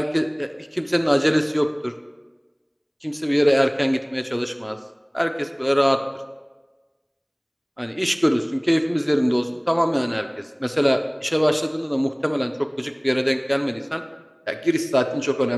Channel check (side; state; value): both; identical; correlation 1.00